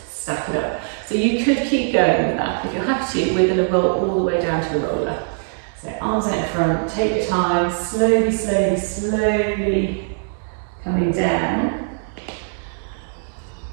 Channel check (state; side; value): silent; left; digital silence